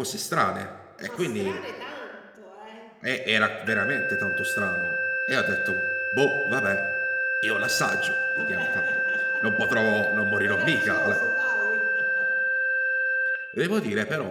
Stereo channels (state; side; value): identical; both; correlation 1.00